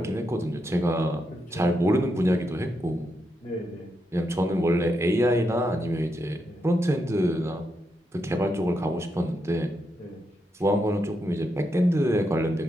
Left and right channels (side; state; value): both; normal; correlation 0.82